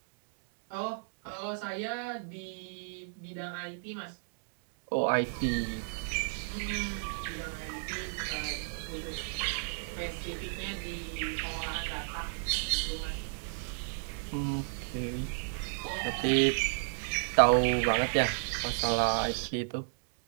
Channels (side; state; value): left; silent; digital silence